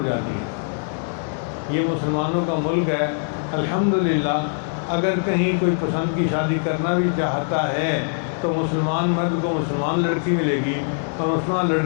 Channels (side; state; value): right; silent; digital silence